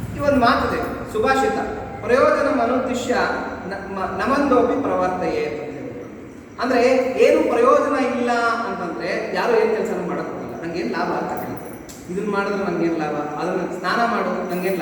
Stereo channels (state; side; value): identical; both; correlation 1.00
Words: ಈ ಒಂದು ಮಾತಿದೆ, ಸುಭಾಷಿತ, ಪ್ರಯೋಜನ ಮನುದ್ದಿಶ್ಯ ನಮಂದೋಪಿ ಪ್ರವರ್ತಯೇ ಅಂತ ಹೇಳ್ಬಿಟ್ಟು. ಅಂದ್ರೆ ಏನು ಪ್ರಯೋಜನ ಇಲ್ಲ ಅಂತಂದ್ರೆ ಯಾರು ಏನ್ ಕೆಲಸ ಮಾಡಕ್ ಹೋಗಲ್ಲ. ನಂಗೇನು ಲಾಭ ಅಂತ ಕೇಳ್ತಾರೆ. ಇದನ್ನ ಮಾಡಿದ್ರೆ ನಂಗೇನು ಲಾಭ, ಅದನ್ನ ಸ್ನಾನ ಮಾಡೋದು ನಂಗೇನು